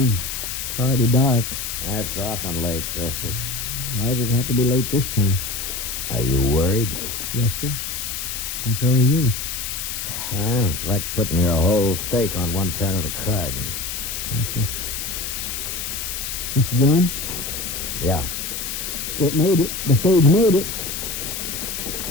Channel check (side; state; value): left; noise; hiss, 5 dB below the sound